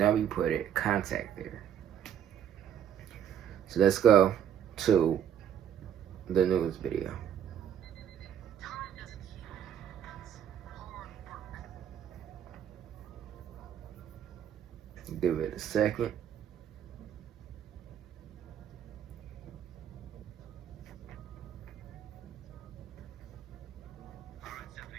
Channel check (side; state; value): left; quieter; 9.4 dB